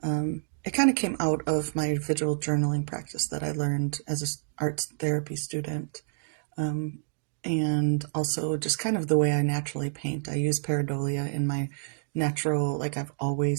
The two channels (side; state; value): left; silent; digital silence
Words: kind of came out of my visual journaling practice that I learned as an arts therapy student. And also just kind of the way I naturally paint. I use pareidolia in my natural, like I've